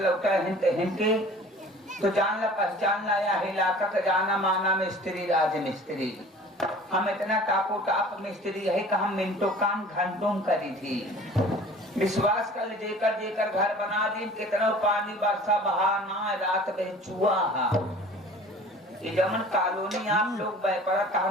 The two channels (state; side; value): normal; both; correlation 0.45